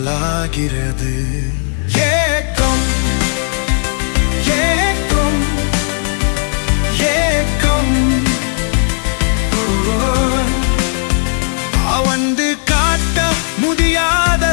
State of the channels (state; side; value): silent; right; 57 dB below the other